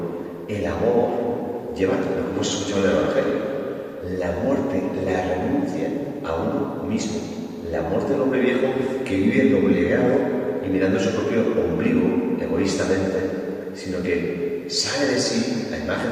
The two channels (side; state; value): both; identical; correlation 1.00